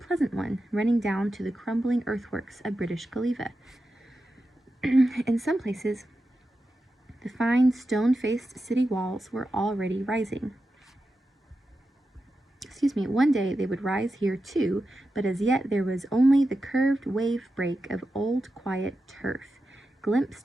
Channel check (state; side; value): normal; both; correlation 0.90